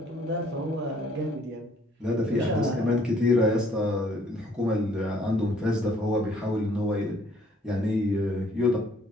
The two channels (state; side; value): normal; both; correlation 0.62